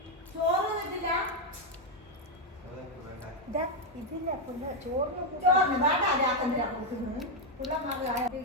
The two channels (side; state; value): both; normal; correlation 0.03